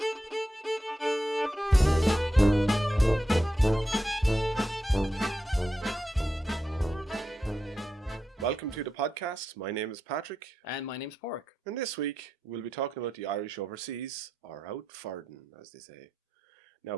Welcome to the podcast. My name is Patrick. And my name's Padraic. And this week we'll be talking about the Irish overseas, or out farden, as they say. Now,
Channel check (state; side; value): normal; both; correlation 0.87